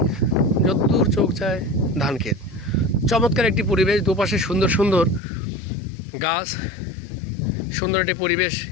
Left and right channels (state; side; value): drops out; right; at 5.2 s